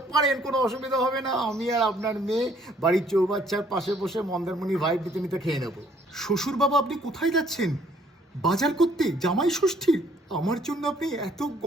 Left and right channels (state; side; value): normal; both; correlation 0.63